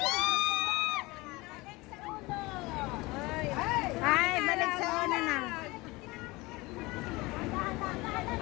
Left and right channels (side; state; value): right; quieter; 22.5 dB